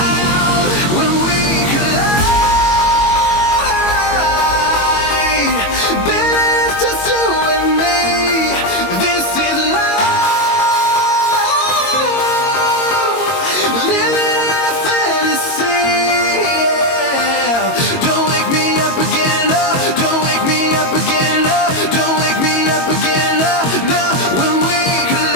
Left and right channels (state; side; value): late; right; 22 ms